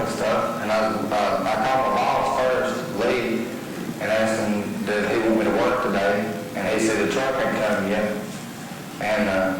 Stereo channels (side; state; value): both; identical; correlation 1.00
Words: and stuff, and I called my boss first, Lee, and asked him, did he want me to work today? And he said the truck hadn't come yet. And